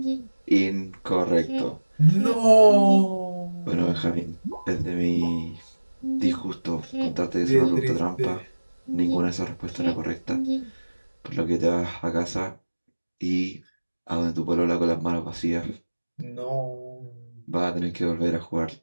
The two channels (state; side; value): inverted; both; correlation -1.00